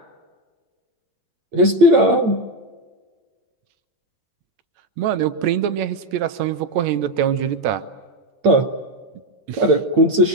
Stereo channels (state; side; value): late; left; 8.8 ms